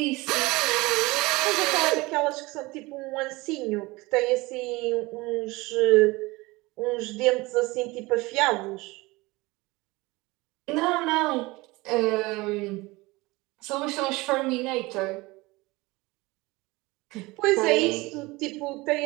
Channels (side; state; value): left; quieter; 22.3 dB